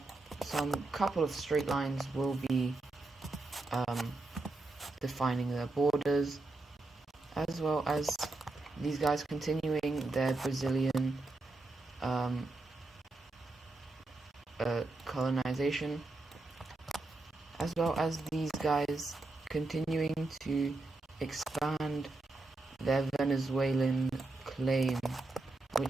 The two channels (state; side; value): quieter; left; 3.0 dB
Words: some couple of straight lines will be defining their borders, as well as these guys continuing their Brazilian colonization, as well as these guys continuing to expand their Venezuelan claim,